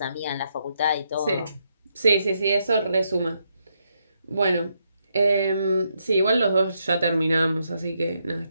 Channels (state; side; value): inverted; both; correlation -0.79